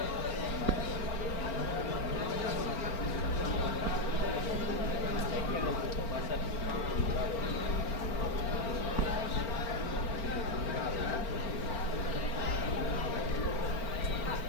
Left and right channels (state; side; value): late; right; 4.4 ms